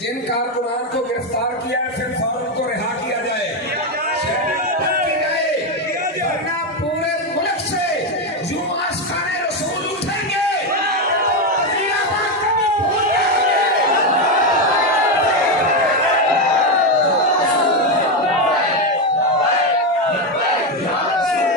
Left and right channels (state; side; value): normal; both; correlation 0.08